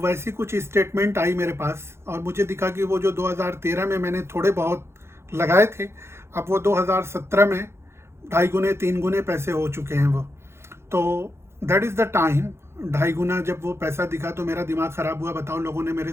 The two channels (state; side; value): late; left; 0.12 ms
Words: कुछ स्टेटमेंट आई मेरे पास और मुझे दिखा कि वो जो 2013 में मैंने थोड़े बहुत लगाए थे, अब वो 2017 में 2.5 गुने 3 गुने पैसे हो चुके हैं वो। तो दैट इज़ द टाइम, 2.5 गुना जब वो पैसा दिखा तो मेरा दिमाग ख़राब हुआ। बताओ, लोगों ने मेरे